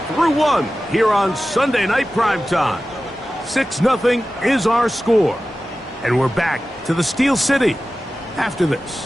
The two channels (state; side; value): normal; both; correlation 0.95